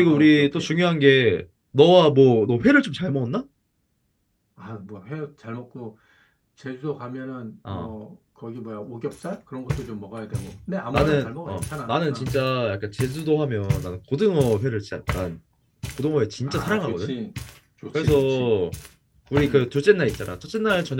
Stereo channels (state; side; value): identical; both; correlation 1.00